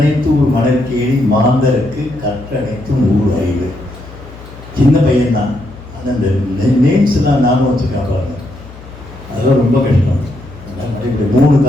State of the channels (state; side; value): noise; left; hum, 18 dB below the sound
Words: ஊர் மணற்கேணி மாந்தருக்கு கற்றனைத்தும் ஊர் அறிவு. சின்ன பையன்தான். ஆனால் இந்த நேம்ஸ்லாம் நானும் வச்சு காப்பாங்க. அதெல்லாம் ரொம்ப கஷ்டம். 3